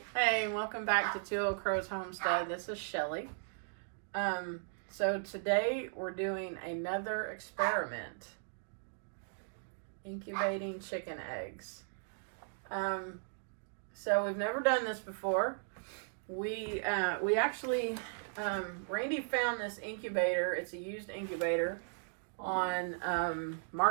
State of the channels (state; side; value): silent; left; digital silence